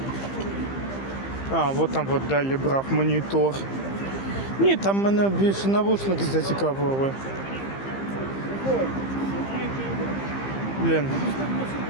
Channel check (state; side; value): late; right; 15 ms